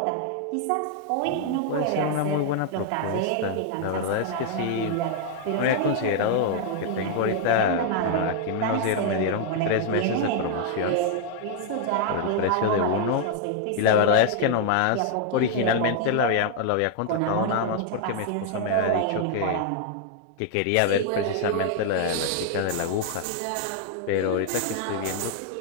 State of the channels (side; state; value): both; different; correlation 0.00